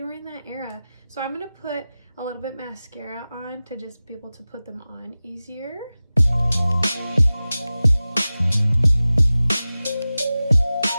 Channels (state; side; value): inverted; both; correlation -0.96